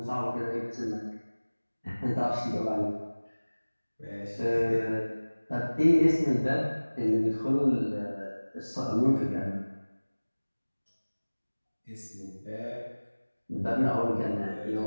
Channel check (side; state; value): both; inverted; correlation -1.00